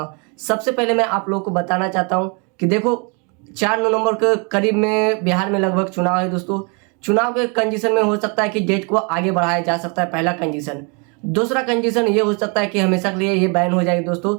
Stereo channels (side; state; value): left; quieter; 34.0 dB